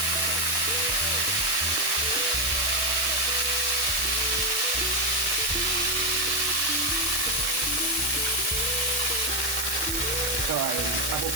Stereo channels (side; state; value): right; noise; hiss, 1 dB below the sound